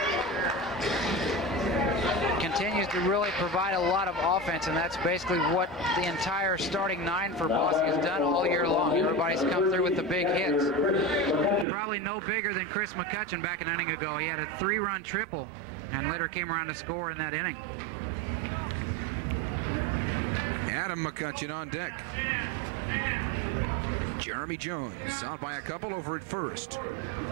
Continues to really provide a lot of offense, and that's basically what the entire starting 9 for Bosse has done all year long. Everybody's come through with the big hits. Probably no bigger than Chris McCutcheon back an inning ago. He had a 3-run triple and later came around to score in that inning. Adam McCutcheon on deck. Jeremy Jones out by a couple over at first.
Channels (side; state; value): left; drops out; at 11.7 s